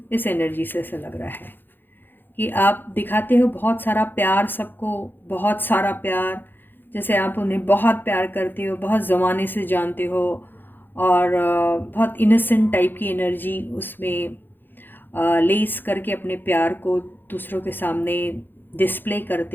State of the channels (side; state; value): right; late; 0.095 ms